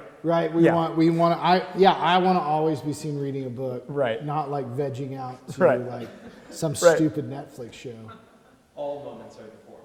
Right. We want. I want to always be seen reading a book. Right. Not like vegging out to Right. like some stupid Netflix show. All moments are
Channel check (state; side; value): identical; both; correlation 1.00